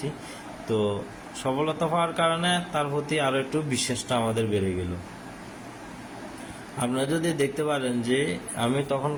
তো সফলতা পাওয়ার কারণে তার প্রতি আরও একটু বিশ্বাসটা আমাদের বেড়ে গেল। আপনারা যদি দেখতে পারেন যে আমি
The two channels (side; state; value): both; identical; correlation 1.00